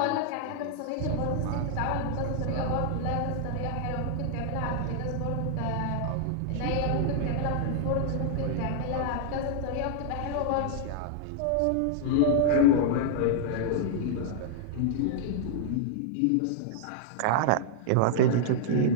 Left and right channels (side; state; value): both; different; correlation -0.01